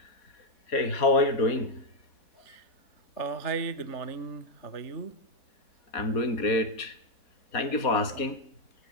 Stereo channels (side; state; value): right; late; 4.2 ms